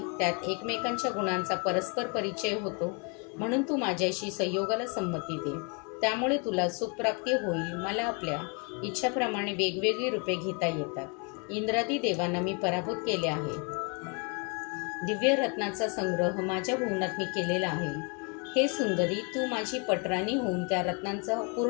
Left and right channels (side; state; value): right; quieter; 33.9 dB